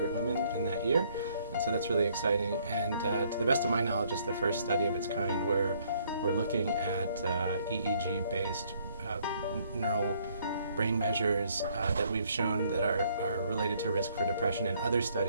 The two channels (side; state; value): both; inverted; correlation -0.65